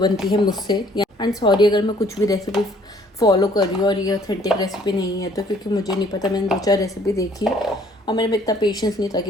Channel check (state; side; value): normal; both; correlation 0.60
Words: है मुझसे। एंड सॉरी अगर मैं कुछ भी रेसिपी फॉलो कर रही हूँ और ये ऑथेंटिक रेसिपी नहीं है तो, क्योंकि मुझे नहीं पता, मैंने 2-4 रेसिपी देखी और मेरे में इतना पेशेंस नहीं था